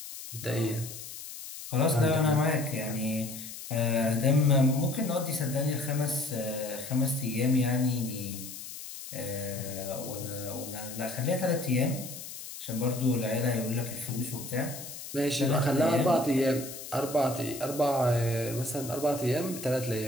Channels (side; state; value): left; noise; hiss, 11 dB below the sound